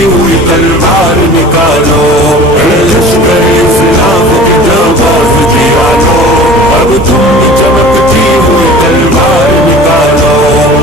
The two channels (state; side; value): normal; both; correlation 0.42